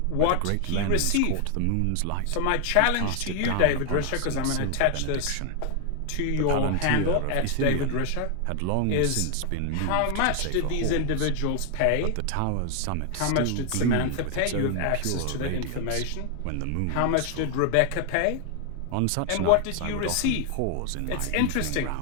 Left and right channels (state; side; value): different; both; correlation 0.00